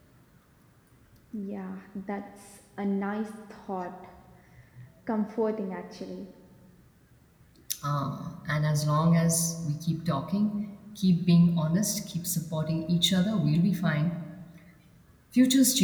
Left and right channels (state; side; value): identical; both; correlation 1.00